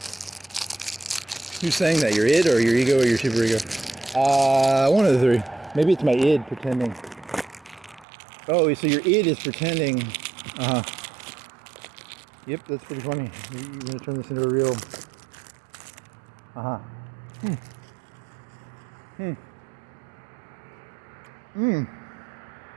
Who's saying that? Your id or your ego or your super ego? One of the 3. Maybe it's my id pretending. Oh, so your id is pretending. Yep, that's pretty funny. You're gonna turn this into a real.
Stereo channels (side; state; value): left; drops out; at 8.1 s